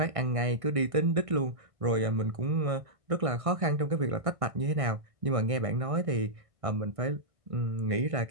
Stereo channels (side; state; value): left; late; 1.6 ms